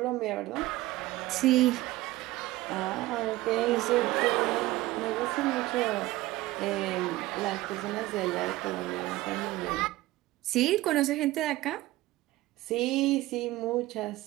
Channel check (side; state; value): left; quieter; 17.9 dB